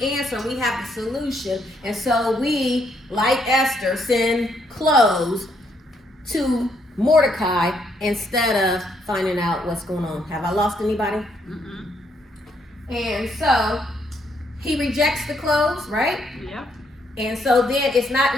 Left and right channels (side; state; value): both; normal; correlation 0.73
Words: answer and we have the solution. And so we, like Esther, send clothes to Mordecai instead of finding out what's going on. Have I lost anybody? And so he rejects the clothes, right? Yep. And so then it's not